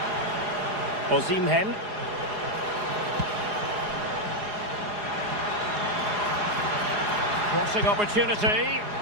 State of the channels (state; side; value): late; left; 4.8 ms